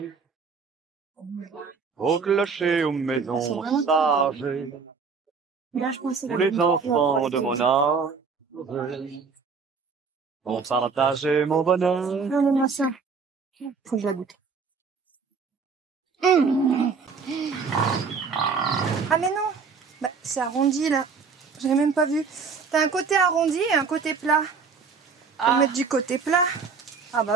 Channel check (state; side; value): quieter; left; 5.3 dB